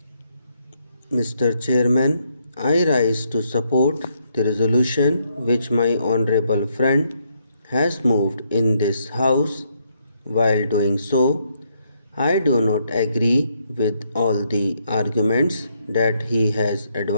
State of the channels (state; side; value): inverted; both; correlation -0.75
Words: Mr. Chairman, I rise to support the resolution which my honorable friend has moved in this House. While doing so, I do not agree with all the arguments that he has